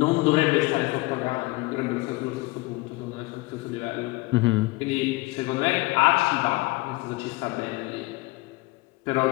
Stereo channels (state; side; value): quieter; right; 22.0 dB